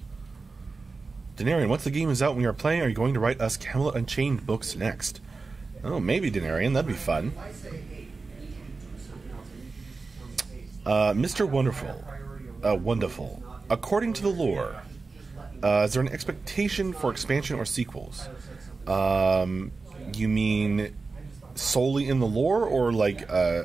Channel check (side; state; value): left; quieter; 4.1 dB